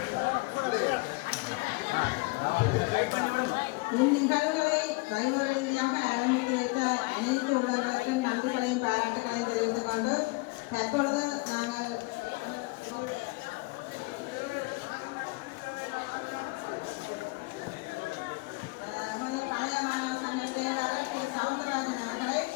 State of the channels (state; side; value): quieter; right; 26.4 dB